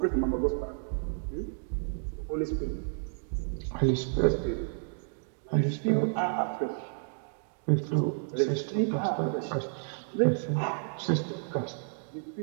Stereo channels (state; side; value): silent; left; 57 dB below the other